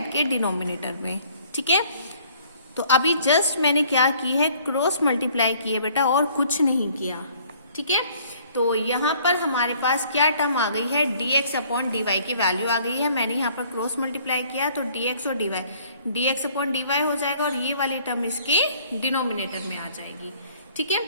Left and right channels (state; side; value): inverted; both; correlation -0.58